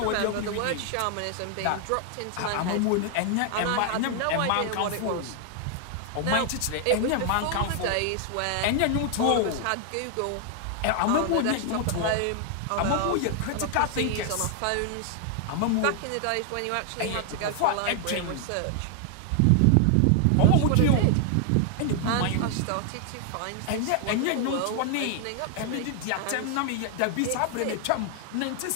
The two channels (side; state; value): both; different; correlation 0.00